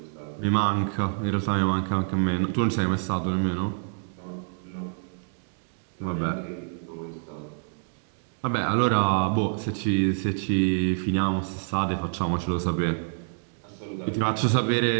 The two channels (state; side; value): silent; left; digital silence